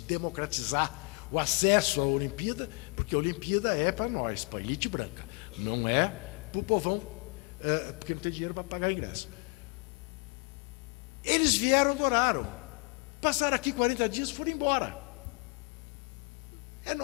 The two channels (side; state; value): right; quieter; 32.1 dB